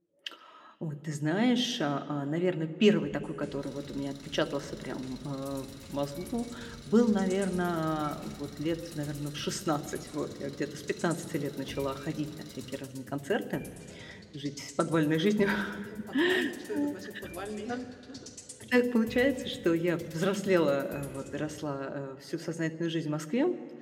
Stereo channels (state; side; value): identical; both; correlation 1.00